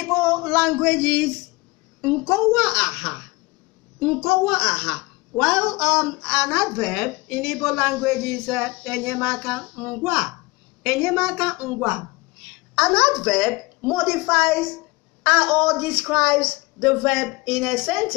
Igbo language is nkowa aha, while an adverb in Igbo language is enyemaka ngwa. An adverb modifies or describes the verb in a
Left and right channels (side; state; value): right; quieter; 24.0 dB